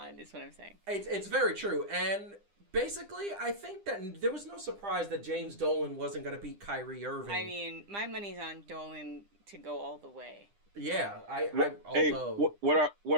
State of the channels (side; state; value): left; late; 9.9 ms